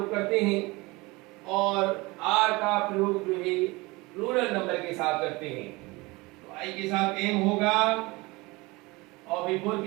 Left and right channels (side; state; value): left; quieter; 23.4 dB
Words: करते हैं, और आर का प्रयोग जो है प्लूरल नंबर के साथ करते हैं। तो आई के साथ एम होगा, और V4